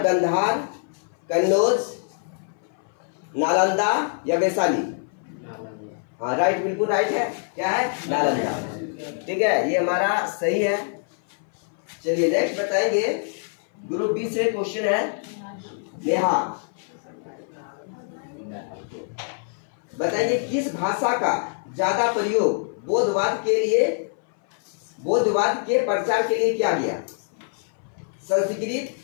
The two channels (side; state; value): right; silent; 59 dB below the other